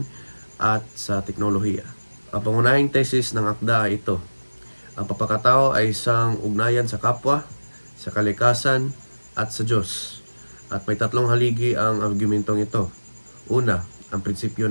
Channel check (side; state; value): both; inverted; correlation -1.00